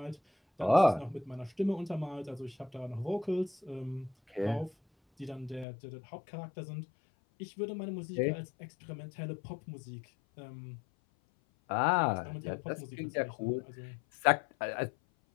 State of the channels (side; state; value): right; drops out; at 5.7 s